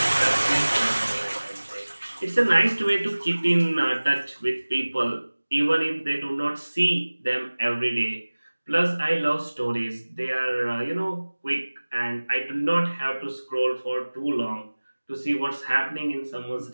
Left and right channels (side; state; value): both; inverted; correlation -1.00